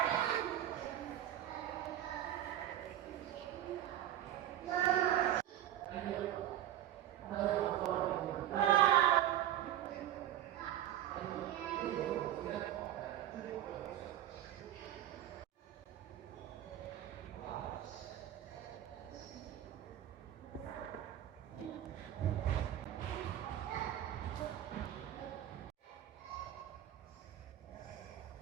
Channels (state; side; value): quieter; left; 12.3 dB